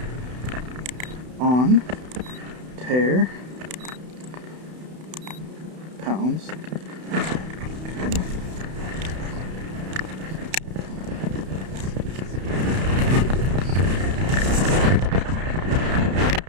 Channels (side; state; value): left; late; 32 ms